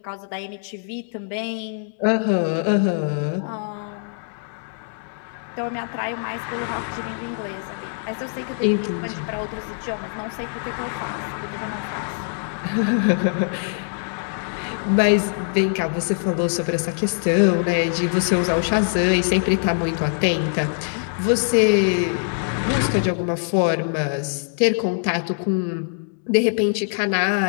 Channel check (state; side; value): silent; right; digital silence